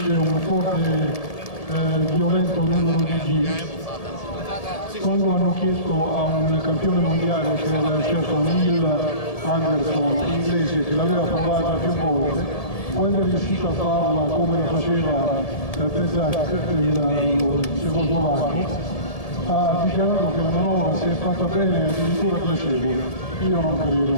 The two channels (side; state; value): right; late; 1.7 ms